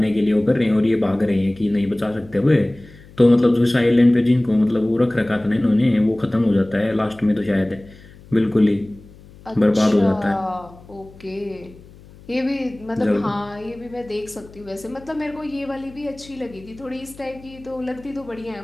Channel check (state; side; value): noise; left; hum, 22 dB below the sound